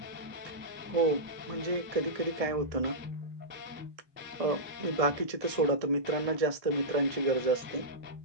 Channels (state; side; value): late; left; 1.6 ms